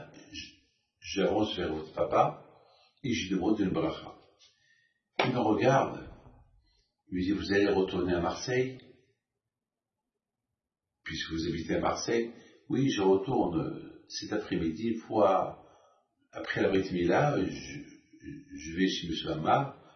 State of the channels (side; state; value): both; identical; correlation 1.00